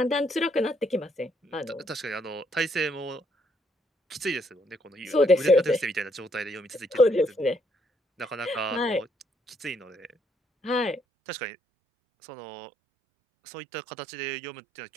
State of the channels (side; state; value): left; drops out; at 11.0 s